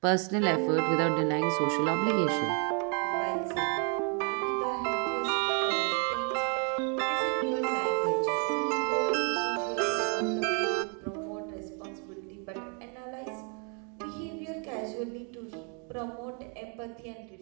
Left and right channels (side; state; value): left; quieter; 38.8 dB